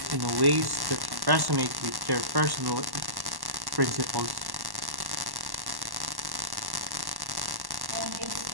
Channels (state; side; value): late; left; 1.1 ms